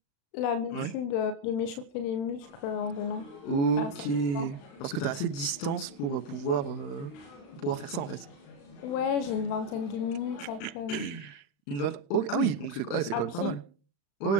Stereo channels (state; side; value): late; right; 35 ms